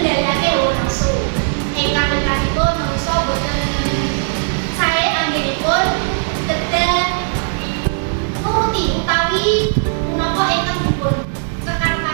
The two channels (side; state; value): left; silent; digital silence